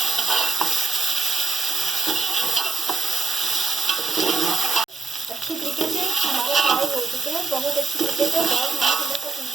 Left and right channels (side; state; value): left; quieter; 4.1 dB